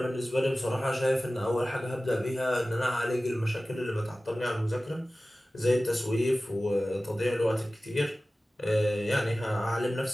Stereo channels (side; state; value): both; normal; correlation 0.96